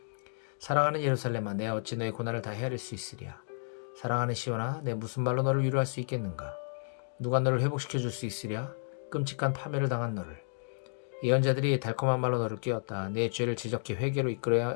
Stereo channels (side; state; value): right; silent; digital silence